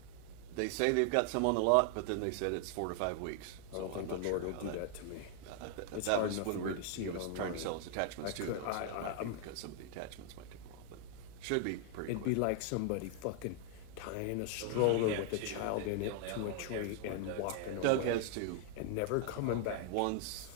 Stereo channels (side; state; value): both; different; correlation 0.00